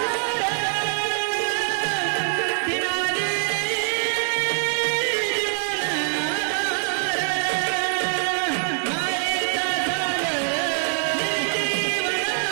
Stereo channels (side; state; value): left; silent; 63 dB below the other